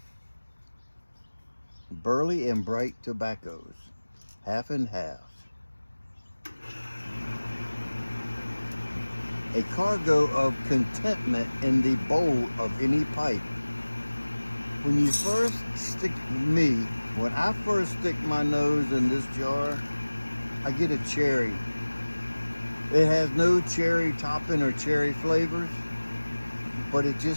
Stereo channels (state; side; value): inverted; both; correlation -1.00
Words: burley and bright tobaccos, half and half. A cargo of contentment in the bowl of any pipe. When I first stick my nose in this jar, I get a cherry. It has no cherry topping or cherry flavors, but it